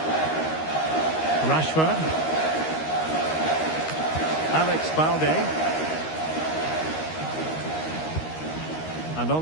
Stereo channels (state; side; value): late; right; 13 ms